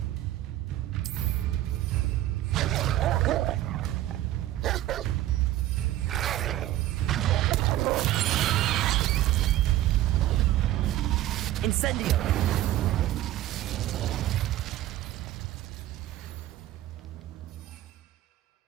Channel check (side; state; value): left; quieter; 14.2 dB